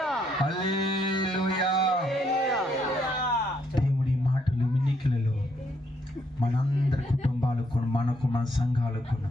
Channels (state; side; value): normal; both; correlation 0.73